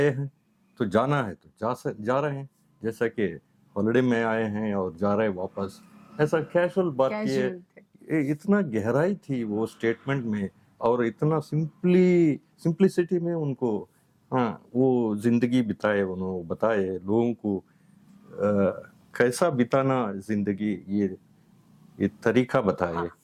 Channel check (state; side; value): identical; both; correlation 1.00